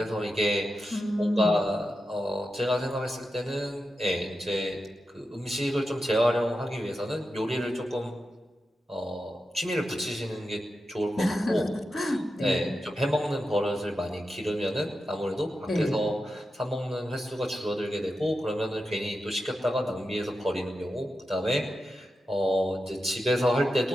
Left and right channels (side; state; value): both; normal; correlation 0.90